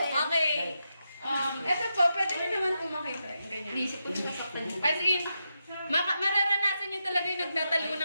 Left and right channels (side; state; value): both; inverted; correlation -0.86